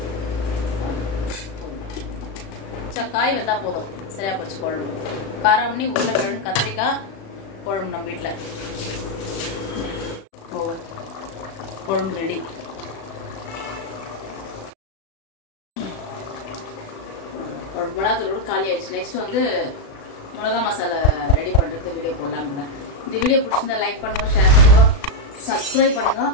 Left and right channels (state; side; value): late; right; 36 ms